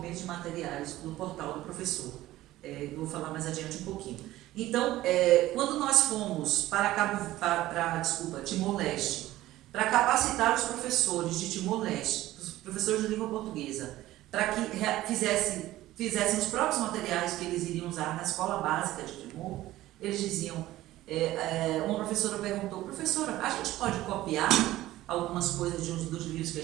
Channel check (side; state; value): left; quieter; 15.7 dB